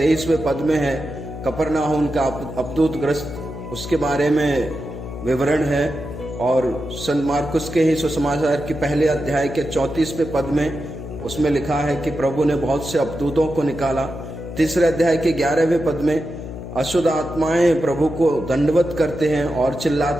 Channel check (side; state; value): left; noise; hum, 10 dB below the sound